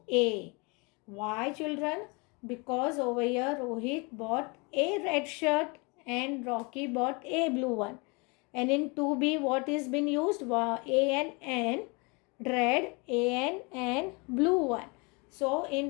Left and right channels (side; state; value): right; quieter; 29.9 dB